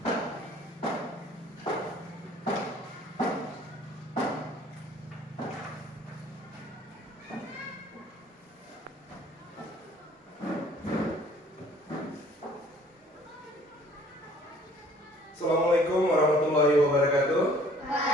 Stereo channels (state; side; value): normal; both; correlation 0.55